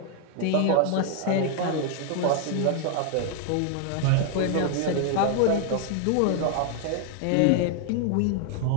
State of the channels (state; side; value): different; both; correlation 0.00